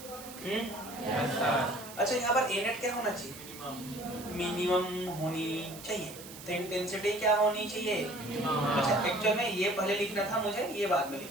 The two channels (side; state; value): right; noise; hiss, 15 dB below the sound